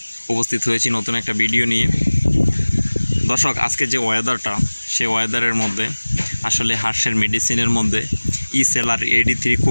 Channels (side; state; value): both; inverted; correlation -1.00